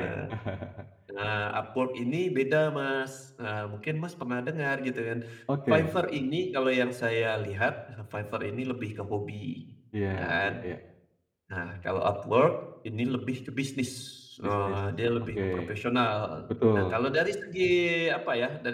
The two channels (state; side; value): identical; both; correlation 1.00